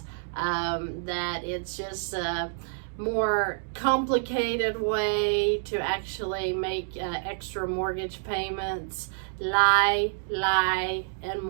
that it's just a more complicated way to actually make extra mortgage payments. Lie, and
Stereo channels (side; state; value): left; silent; digital silence